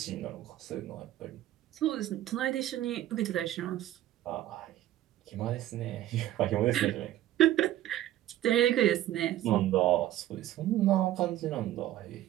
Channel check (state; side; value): quieter; left; 13.5 dB